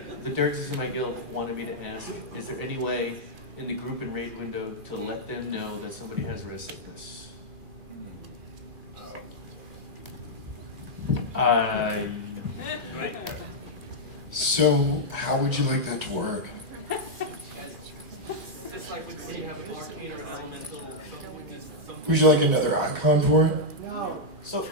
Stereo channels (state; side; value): late; left; 2.5 ms